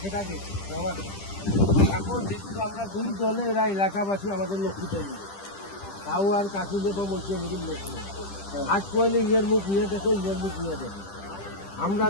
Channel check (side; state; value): right; late; 10 ms